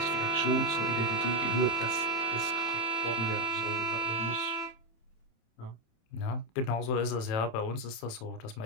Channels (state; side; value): late; right; 27 ms